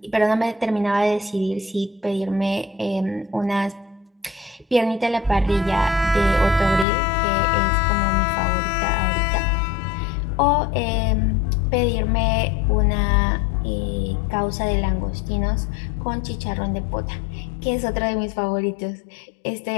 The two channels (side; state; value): right; drops out; at 6.9 s